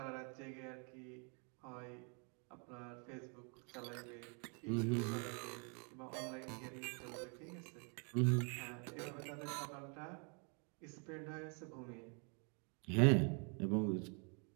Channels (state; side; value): quieter; left; 37.5 dB